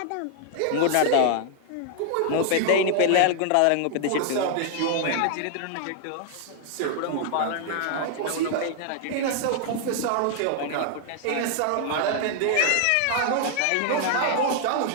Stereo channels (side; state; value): both; different; correlation 0.00